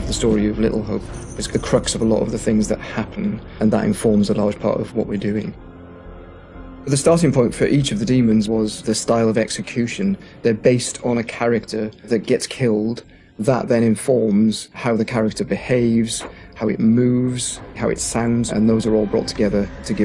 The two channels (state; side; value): identical; both; correlation 1.00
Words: the story of Little Hope. It's the crux of a lot of the things that happen, and that informs a large part of what we're doing. The starting point for each of the demons was the style of execution. They're based on a character that gets killed. That then informs how the character behaves, how it moves, how it sounds, and those are all brought together to